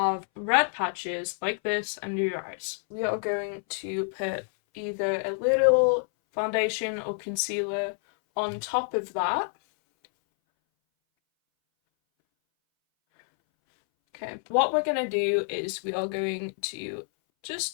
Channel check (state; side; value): silent; right; 60 dB below the other